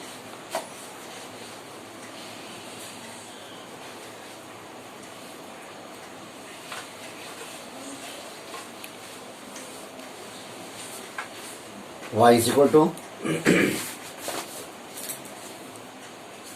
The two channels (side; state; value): both; identical; correlation 1.00